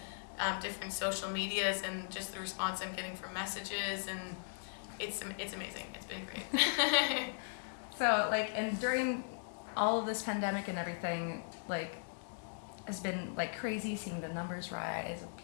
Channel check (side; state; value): right; silent; digital silence